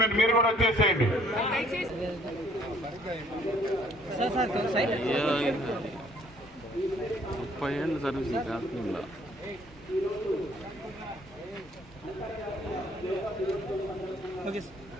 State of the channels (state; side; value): normal; both; correlation 0.61